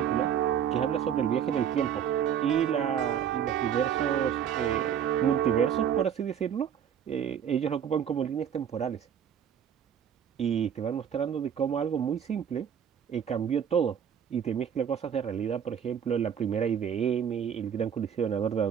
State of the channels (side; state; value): left; quieter; 8.6 dB